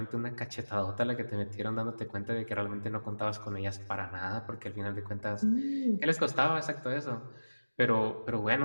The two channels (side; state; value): both; inverted; correlation -1.00